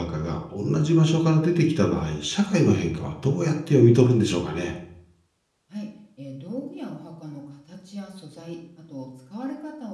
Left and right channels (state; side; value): identical; both; correlation 1.00